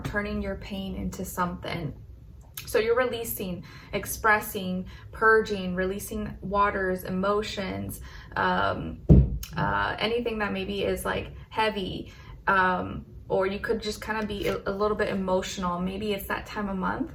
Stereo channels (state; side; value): identical; both; correlation 1.00